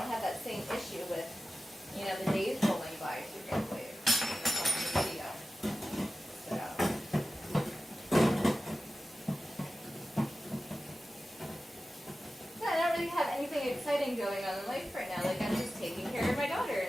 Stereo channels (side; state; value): both; normal; correlation 0.94